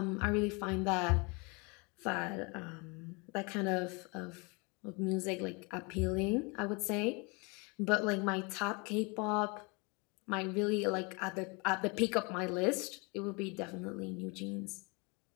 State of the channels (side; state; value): right; quieter; 30.1 dB